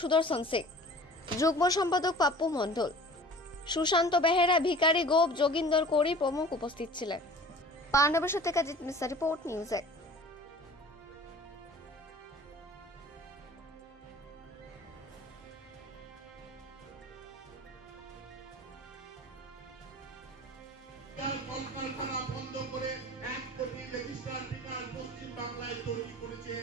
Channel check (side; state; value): both; normal; correlation 0.44